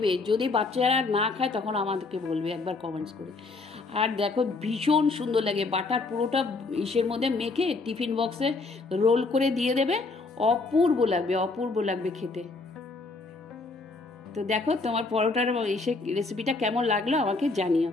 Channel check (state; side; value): quieter; right; 3.7 dB